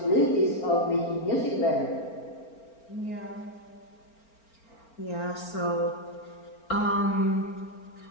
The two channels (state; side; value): late; right; 4.4 ms